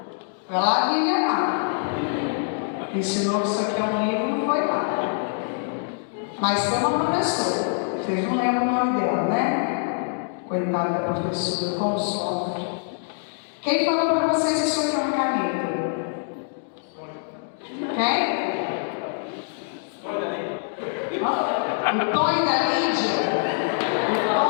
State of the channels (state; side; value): silent; right; 62 dB below the other